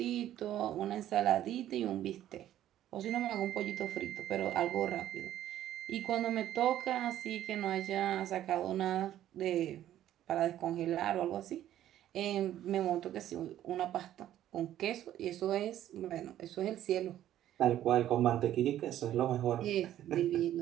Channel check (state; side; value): quieter; left; 12.2 dB